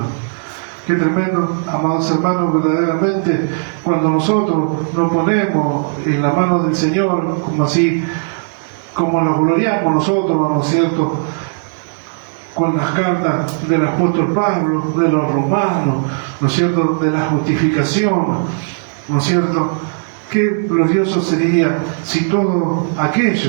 tremendo, amados hermanos, verdaderamente, cuando nosotros nos ponemos en la mano del Señor, como así, como nos gloriamos nosotros, ¿no es cierto?, con las cartas del apóstol Pablo, de los romanos, ¿no es cierto?, de la justificación, ¿no es cierto?, Qué glorioso sería si todos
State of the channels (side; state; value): left; silent; digital silence